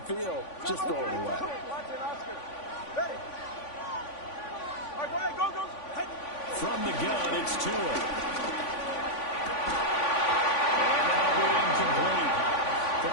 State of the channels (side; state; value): right; late; 3.5 ms